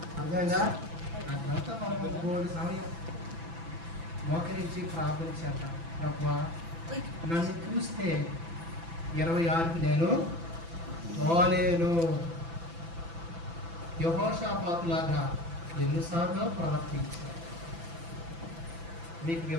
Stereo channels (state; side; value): late; left; 6.0 ms